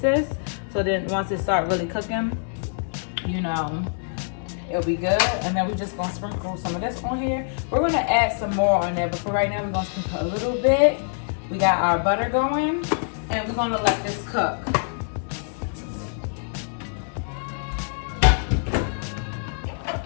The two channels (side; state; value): right; silent; digital silence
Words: so then once it start really cooking, it'll be good. And then we're just gonna sprinkle some of this on here. We're gonna add some more on there, but for right now we're gonna sprinkle a little bit. We got our butter going, and we're gonna let this cook.